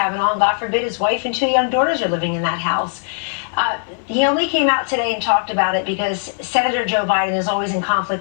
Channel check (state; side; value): silent; right; digital silence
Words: And God forbid his wife and 2 young daughters are living in that house. He only came out today and talked about it because Senator Joe Biden is always in